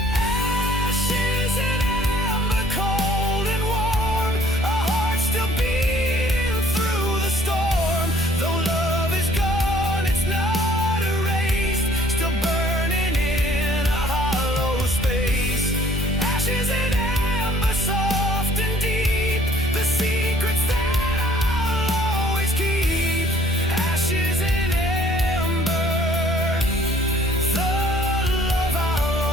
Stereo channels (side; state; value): both; normal; correlation 0.58